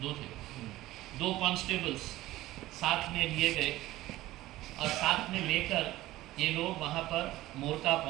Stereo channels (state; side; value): quieter; left; 16.6 dB